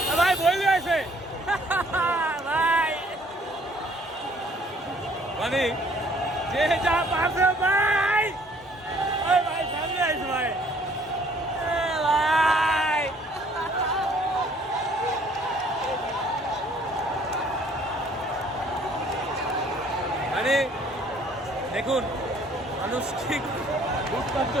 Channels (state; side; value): normal; both; correlation 0.60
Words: ভাই বই আছে ভাই মানে যে যা পারছে ভাই ওই ভাই সামনে আছে ভাই ভাই মানে দেখুন মানুষ ঠিক লুটপাট